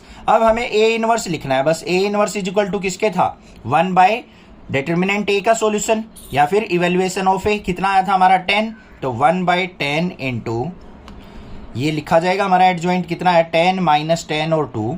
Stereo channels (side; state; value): both; identical; correlation 1.00